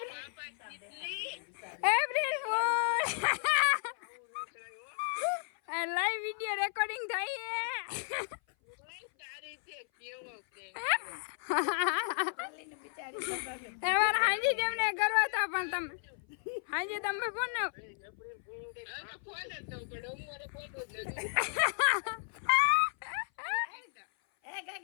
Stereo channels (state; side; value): silent; right; 55 dB below the other